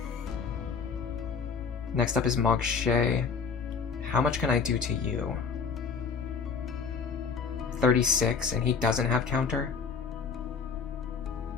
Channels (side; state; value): right; quieter; 5.6 dB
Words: Next up is Marche. How much can I do to you? 36, and he doesn't have counter?